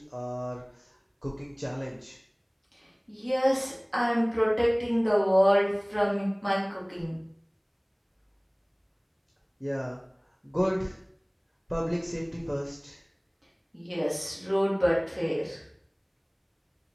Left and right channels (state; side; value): identical; both; correlation 1.00